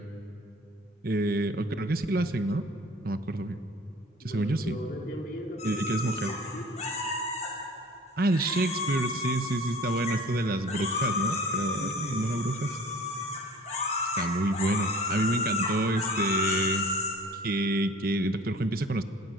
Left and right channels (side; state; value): both; normal; correlation 0.46